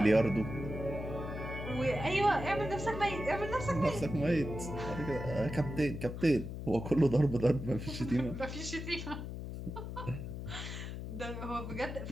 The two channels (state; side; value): noise; left; hum, 7 dB below the sound